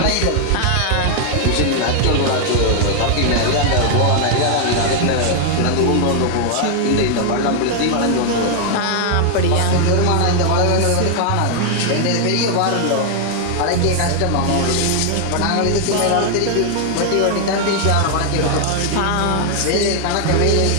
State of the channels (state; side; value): different; both; correlation 0.00